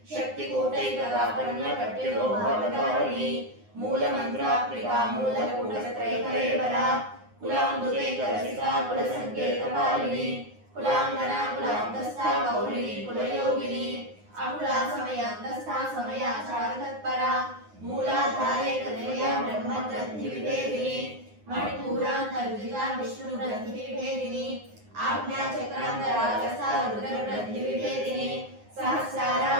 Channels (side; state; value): left; late; 9.6 ms